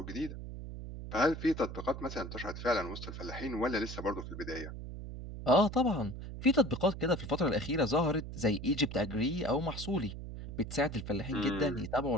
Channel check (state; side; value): noise; right; hum, 9 dB below the sound